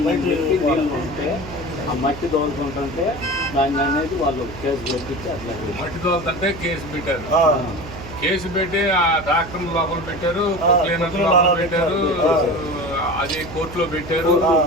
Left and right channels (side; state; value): right; noise; hum, 13 dB below the sound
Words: నీళ్ళు ఉంటే ఆ మట్టి తోలుకుంటుంటే దాన్ని అనేది వాళ్ళు కేసు పెట్టించి అట్లా మట్టి తోలుతుంటే కేసు పెట్టి ఆ డాక్టర్ లోపల పెట్టారు, పెట్టారు, అది కోర్టులో పెట్టారు.